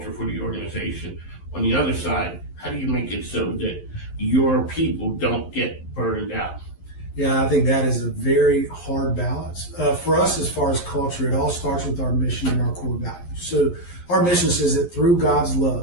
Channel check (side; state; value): right; late; 11 ms